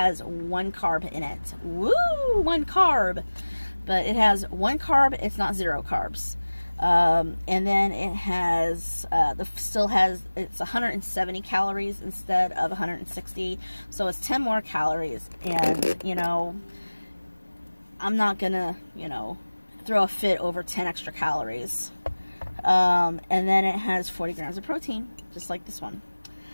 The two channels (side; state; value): both; inverted; correlation -1.00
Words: 1 carb in it. Woo! 1 carb. But it has 1 carb. It's not 0 carbs. And then it has, it's 170 calories instead of 160. So it's 10 more calories. And, you know, I'm not gonna, you know, throw a fit over 10 extra calories. And then it has 40 grams of protein, just like this one.